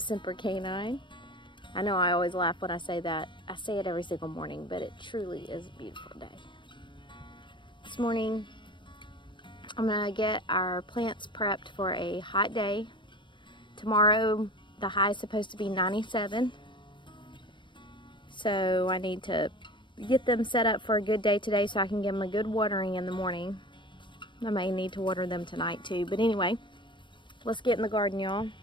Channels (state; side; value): late; right; 0.23 ms